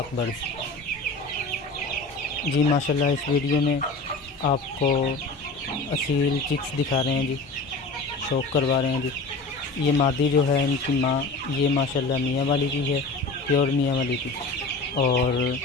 बर्ड्स। जी माशाल्लाह, इस वीडियो में आपको असील चिक्स दिखा रहे हैं जी, शौक करवा रहे हैं जी। ये मादी जो है, इनकी माँ ये माशाल्लाह मियाँ वाली की है, प्योर मियाँ वाली की। और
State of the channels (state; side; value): quieter; right; 3.4 dB